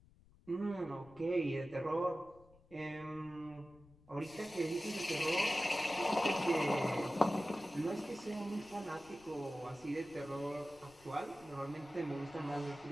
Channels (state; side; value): noise; left; rumble, 26 dB below the sound